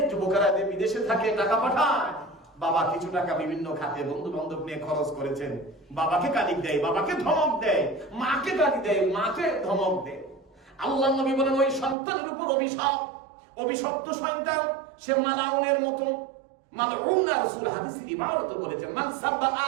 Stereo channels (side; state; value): left; drops out; at 12.0 s